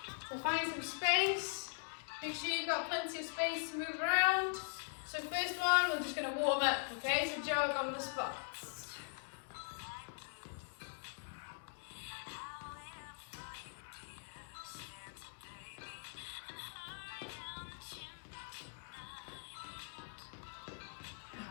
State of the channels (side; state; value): right; silent; digital silence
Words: So find some space, make sure you've got plenty of space to move around. So first one, we're just going to warm up, okay, so jog on the spot.